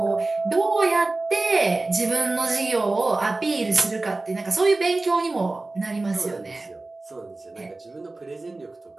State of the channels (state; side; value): quieter; left; 3.2 dB